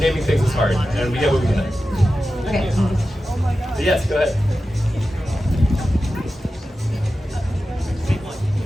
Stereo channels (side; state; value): both; normal; correlation 0.93